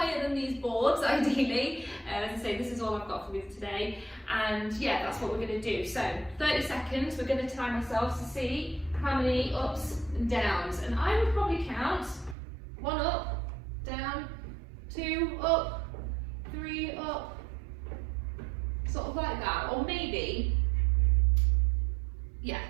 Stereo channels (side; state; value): left; drops out; at 12.4 s